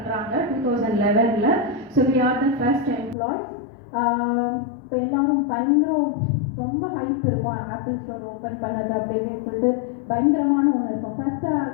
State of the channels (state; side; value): drops out; right; at 3.2 s